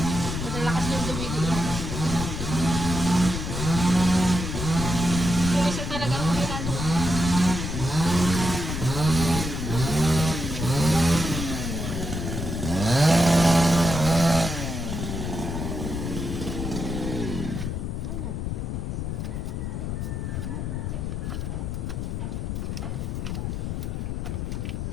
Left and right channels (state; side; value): noise; left; rumble, 3 dB below the sound